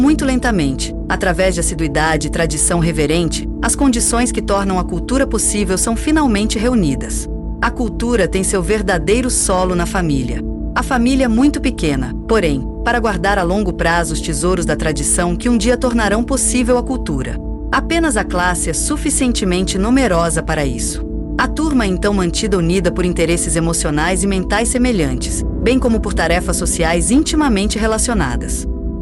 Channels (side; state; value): both; identical; correlation 1.00